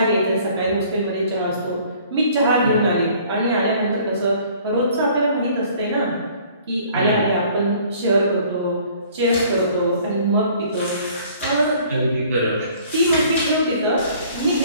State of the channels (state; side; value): inverted; both; correlation -0.55